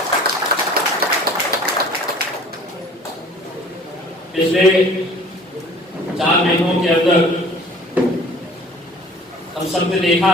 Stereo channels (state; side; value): normal; both; correlation 0.49